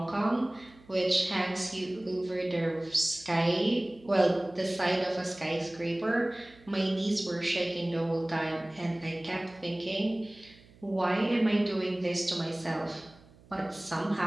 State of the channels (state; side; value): noise; right; hum, 25 dB below the sound